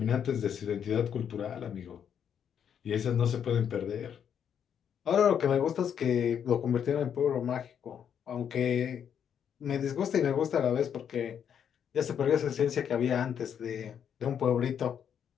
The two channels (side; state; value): right; quieter; 8.4 dB